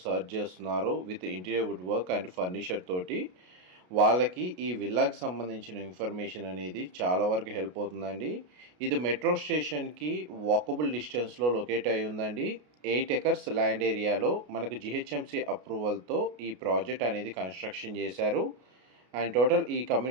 సర్చ్ చేస్తున్నారో with interior wood work and furniture తోటి, వాళ్ళకి ఈ విల్లాకి సంబంధించిన ఇన్ఫర్మేషన్ అనేది చాలా వరకు హెల్ప్ అవుతుందండి. ఇది మెట్రో స్టేషన్కి వాకబుల్ డిస్టెన్స్లో లొకేట్ అయి ఉందండి. 8 ఎకర్స్ ల్యాండ్ ఏరియాలో మనకు జిహెచ్ఎంసీ అప్రూవల్తో ఈ ప్రాజెక్ట్ అనేది కన్స్ట్రక్షన్ చేశారు. అండ్ టోటల్ ఈ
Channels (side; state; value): left; late; 33 ms